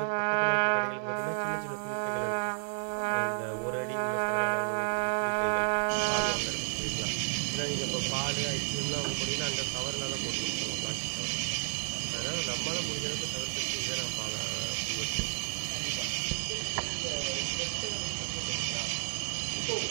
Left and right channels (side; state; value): left; silent; digital silence